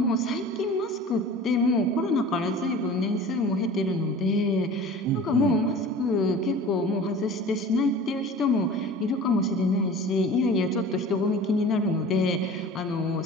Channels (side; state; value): both; normal; correlation 0.40